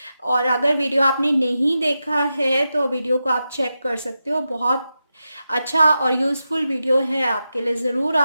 और अगर वीडियो आपने नहीं देखा है तो वीडियो को आप चेक कर सकते हो, बहुत अच्छा और यूज़फुल वीडियो है आपके लिए, ज़रूर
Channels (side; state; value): both; inverted; correlation -0.90